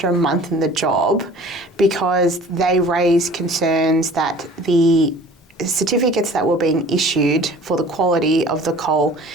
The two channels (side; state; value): both; normal; correlation 0.46